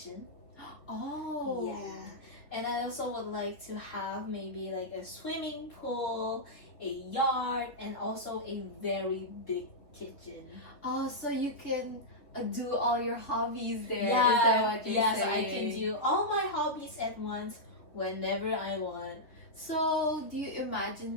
Oh. Yeah. And I also would like to have maybe like a swimming pool, a yard, and also a very big kitchen. Oh, so you can do all your hobbies there. Yeah, is that what you're yes, saying? I can do all my hobbies at once whenever I want. So, do you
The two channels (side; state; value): right; late; 3.5 ms